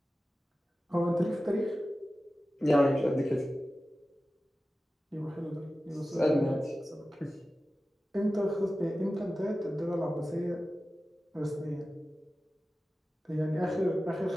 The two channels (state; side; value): normal; both; correlation 0.95